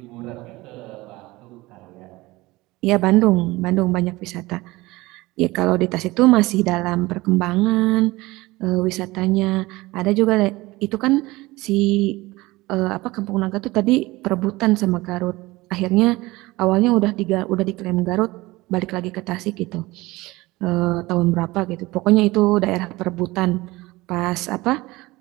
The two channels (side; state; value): left; quieter; 20.4 dB